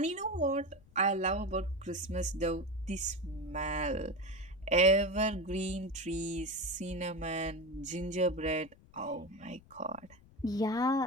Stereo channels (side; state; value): left; noise; rumble, 25 dB below the sound